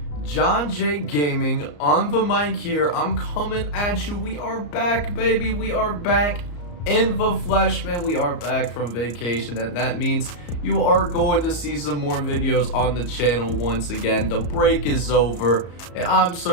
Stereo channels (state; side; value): late; right; 34 ms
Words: JohnJake Gaming on the mic here. I'm coming at you. We are back, baby. We are back in the flesh, man. We are back from vacation, and that means you are going to see some more videos on the channel once again. The break is over, and I'm